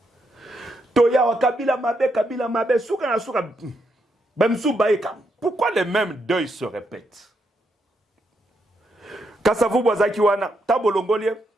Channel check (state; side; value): normal; both; correlation 0.80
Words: toya wa kabila mabe suka na suka bamsu baeka pourquoi les mêmes deuils se répètent Kasavubu azaki wana tabolongolie